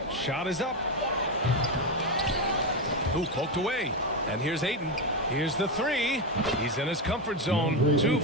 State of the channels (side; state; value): both; normal; correlation 0.11